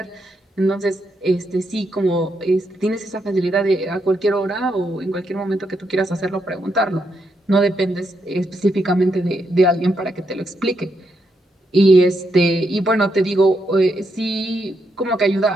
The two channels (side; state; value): both; normal; correlation 0.80